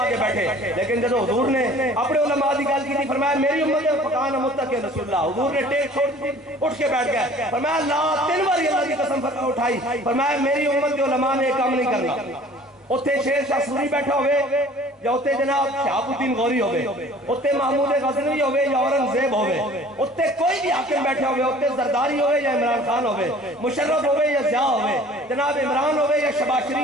کے بیٹھے لیکن جب حضور نے اپنے علماء دی گل کی تھی فرمایا میری امت ہے فقان متقین رسول اللہ حضور نے ٹیک چھوڑ دی اٹھ کے بیٹھ گئے فرمایا اللہ 3 بار اللہ کی قسم اٹھائی فرمایا میری امت کے علماء نے کام نہیں کرنا اتھے شیر شاہ سوری بیٹھا ہوئے یا اتھے جناب شہاب الدین غوری ہوئے اتھے محمود غزنوی ہوئے یا اورنگزیب ہوئے اتھے کوئی بھی حاکم بیٹھا ہوئے اتھے زرداری ہوئے یا عمران خان ہوئے مشرف ہوئے یا ضیاء ہوئے جناب عمران ہوئے یا شہباز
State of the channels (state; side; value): normal; both; correlation 0.49